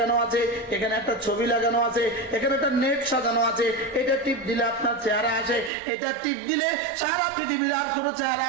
আছে, এখানে একটা ছবি লাগানো আছে, এখানে একটা নেট সাজানো আছে, এটা টিপ দিলে আপনার চেহারা আসে, এটা টিপ দিলে সারা পৃথিবীর আর কোনো চেহারা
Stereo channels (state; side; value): drops out; left; at 5.7 s